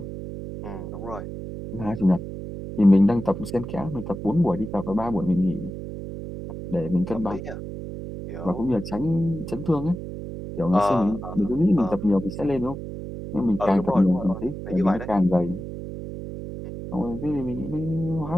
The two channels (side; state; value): right; noise; hum, 8 dB below the sound